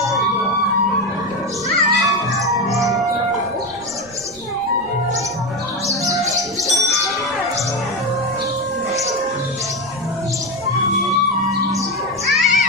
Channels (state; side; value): noise; right; rumble, 23 dB below the sound